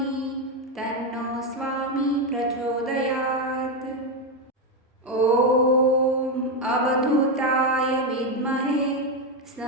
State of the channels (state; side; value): normal; both; correlation 0.07